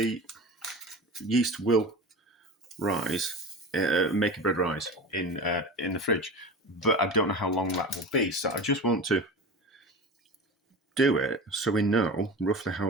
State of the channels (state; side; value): normal; both; correlation 0.31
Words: yeast will rise, make a bread rise in the fridge, but I don't know how long that will be. So I just want to do it so we know roughly how